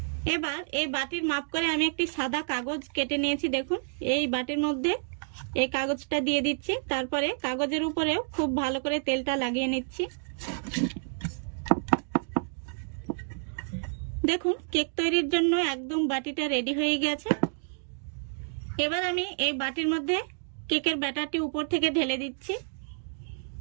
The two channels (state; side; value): silent; left; digital silence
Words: এবার এই বাটির মাপ করে আমি একটি সাদা কাগজ কেটে নিয়েছি। দেখুন এই বাটির মধ্যে এই কাগজটা দিয়ে দিচ্ছি। তারপরে কাগজের উপরেও খুব ভালো করে তেলটা লাগিয়ে নিচ্ছি। দেখুন কেক তৈরির জন্য একদম বাটিটা রেডি হয়ে গেছে। এবার আমি এই বাটির মধ্যে কেকের ব্যাটারটি উপর থেকে ঢেলে দিচ্ছি।